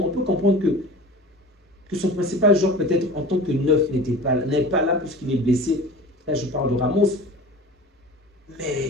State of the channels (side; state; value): both; normal; correlation 0.38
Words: on peut comprendre que son principal joueur, peut-être en tant que neuf, n'est pas là puisqu'il est blessé. Là, je parle de Ramos.